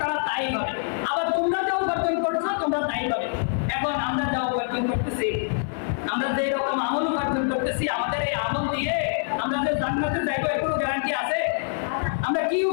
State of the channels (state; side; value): silent; right; 62 dB below the other